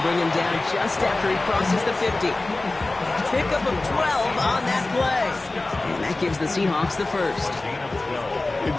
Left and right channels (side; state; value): right; quieter; 3.0 dB